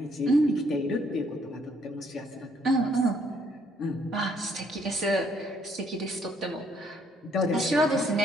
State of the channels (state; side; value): normal; both; correlation 0.67